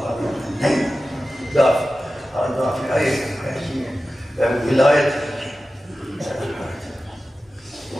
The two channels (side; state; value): both; normal; correlation 0.94